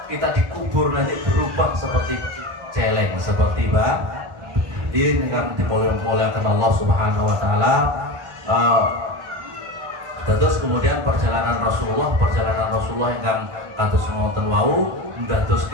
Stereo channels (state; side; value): late; left; 1.2 ms